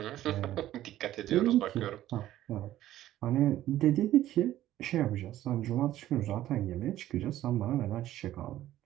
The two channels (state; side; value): quieter; left; 13.6 dB